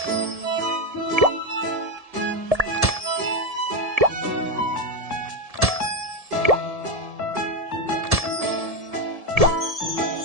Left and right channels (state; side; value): late; left; 1.7 ms